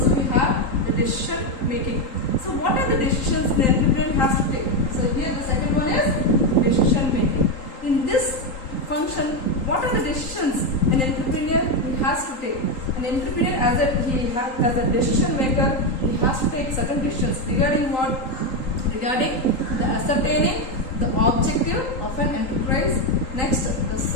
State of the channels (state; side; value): late; right; 3.8 ms